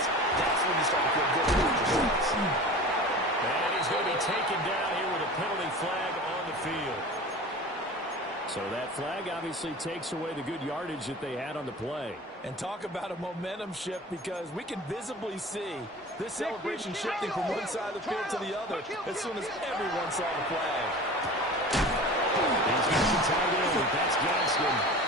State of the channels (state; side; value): normal; both; correlation 0.37